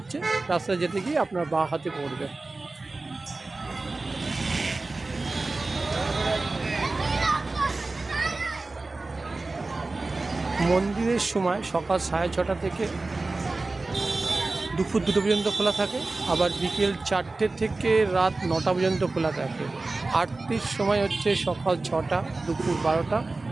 রাস্তা যেতে গিয়ে আপনার বাঁ হাতে পড়বে। মন্দিরের সময় সকাল 6:30 থেকে দুপুর 2টো পর্যন্ত খোলা থাকে, আবার বিকেল 4টে থেকে রাত 9টা পর্যন্ত খোলা থাকে। আরতির সময় হচ্ছে সকাল 6টা, দুপুর 12টা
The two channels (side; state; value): left; quieter; 3.4 dB